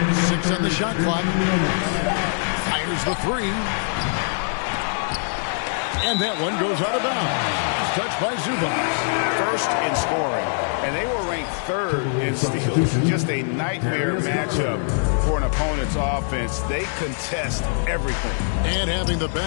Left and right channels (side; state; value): right; silent; digital silence